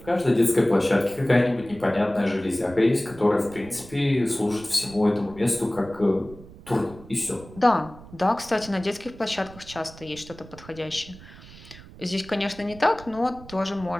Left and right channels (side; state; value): right; noise; rumble, 18 dB below the sound